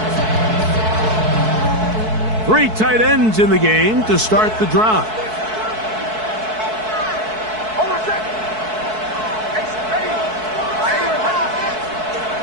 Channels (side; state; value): left; late; 4.6 ms